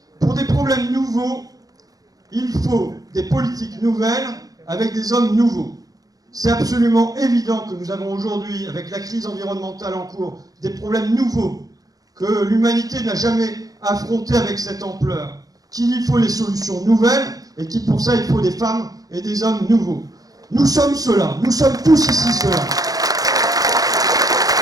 Pour des problèmes nouveaux, il faut des politiques nouvelles avec des hommes nouveaux. » C'est absolument évident que nous avons aujourd'hui, avec la crise environnementale en cours, des problèmes nouveaux que l'humanité n'a jamais affrontés avec cette ampleur, qu'il y faut des solutions nouvelles et qu'il pour ça il faut des femmes et des hommes nouveaux. Nous sommes ceux-là, nous sommes tous ici ceux-là.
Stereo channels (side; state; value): left; late; 0.18 ms